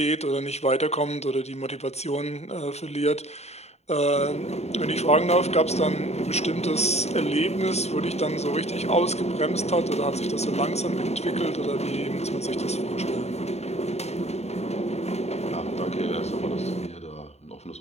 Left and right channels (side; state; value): right; late; 0.31 ms